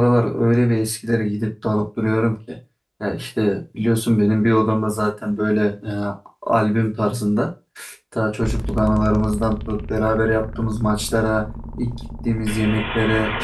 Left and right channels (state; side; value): identical; both; correlation 1.00